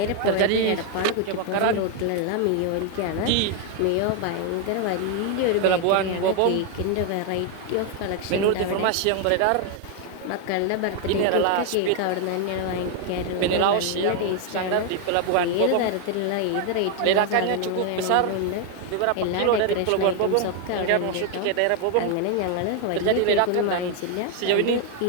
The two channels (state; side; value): different; both; correlation 0.00